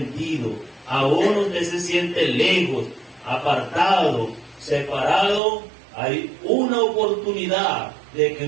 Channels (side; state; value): left; drops out; at 5.4 s